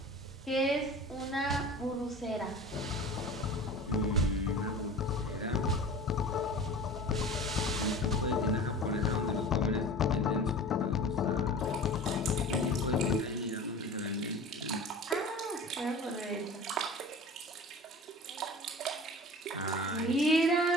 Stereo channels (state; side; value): normal; both; correlation 0.38